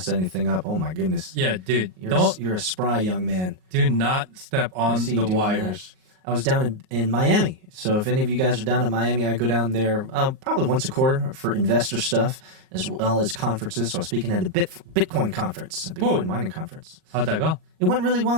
anything up. Oh my goodness. Yeah, dude. You're a spry young man. Do not step on see you the doing wires. I was down in Miami. So if any of you guys are down in Miami, I go down there probably once a quarter for investor stuff as well as conferences. So I was speaking at a Bitcoin conference, a Bitcoin mining conference. How'd that go? It went really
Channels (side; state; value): left; late; 38 ms